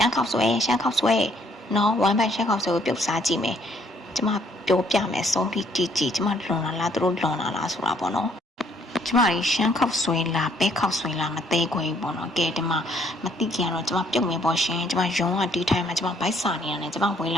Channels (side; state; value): both; normal; correlation 0.65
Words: မ်းခောက်ဆွဲနော်ဝမ်းပိုင်ရှမ်းခောက်ဆွဲကိုပြုတ်စားကြည့်မယ်ကျမပြောပြမယ်ဆုံးဖြတ်ကြည့်ကျမလွန်လာလားသူတို့လွန်လာလားဆိုတာပေါ့နော်ကျမရီရှမ်းခောက်ဆွဲလားပဲခောက်ဆွဲလားမသေးခွေပေါ့နော်ကဲဒီမှာမသိကြတော့ကျမပြုတ်မယ်ပေါ့ရှင်ကျမရုံးကဒီထိုင်မှာကျမဘိုက်စာနေရတယ်ကျမဝင်